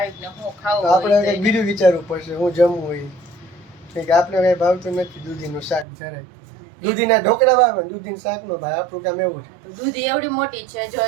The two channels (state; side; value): drops out; left; at 5.9 s